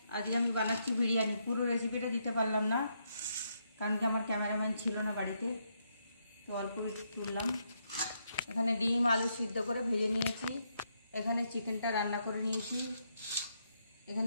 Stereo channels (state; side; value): inverted; both; correlation -0.78